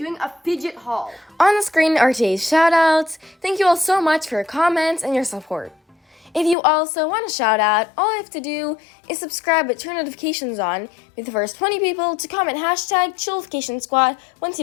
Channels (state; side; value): drops out; right; at 6.6 s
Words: a fidget haul. On the screen are today's shoutouts. Thank you all so much for your comments and your support. If you also want a shout out, all you have to do is subscribe but turn notifications on. Be the first 20 people to comment hashtag Chillification once